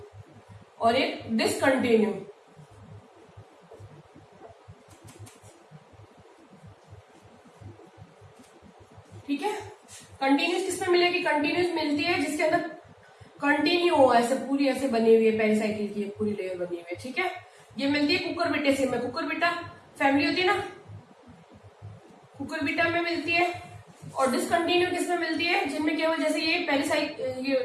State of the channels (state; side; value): identical; both; correlation 1.00